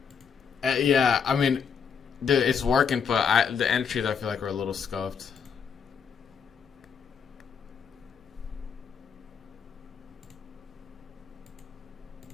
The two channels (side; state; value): right; quieter; 6.7 dB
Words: Yeah, I mean, dude, it's working, but the entries I feel like are a little scuffed.